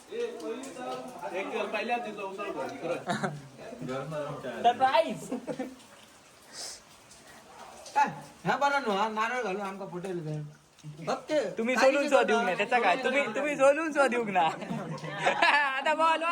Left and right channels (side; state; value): both; identical; correlation 1.00